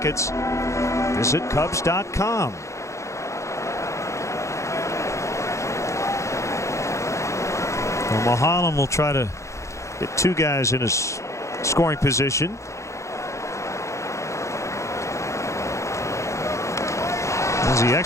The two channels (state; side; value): late; right; 0.14 ms